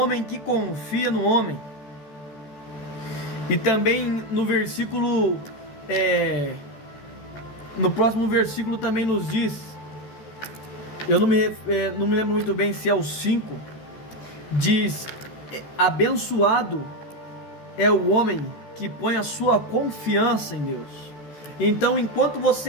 que confia no homem. E também no versículo, no próximo versículo também nos diz, eu não me lembro muito bem se é o 5, diz: abençoado é o homem que põe a sua confiança em Deus. Então, enquanto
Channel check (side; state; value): right; late; 14 ms